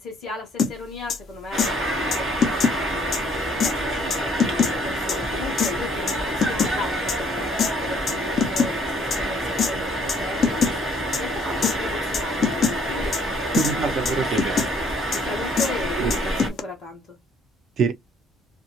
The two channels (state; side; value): normal; both; correlation 0.62